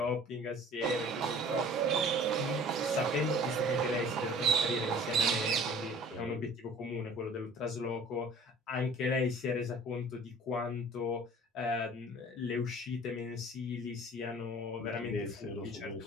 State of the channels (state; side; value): normal; both; correlation 0.48